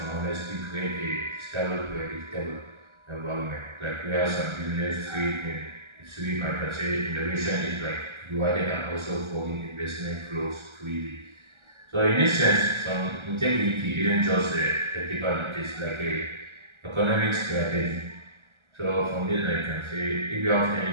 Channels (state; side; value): late; left; 1.3 ms